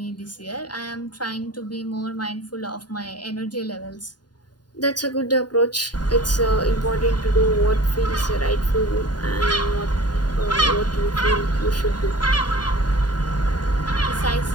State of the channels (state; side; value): late; right; 0.70 ms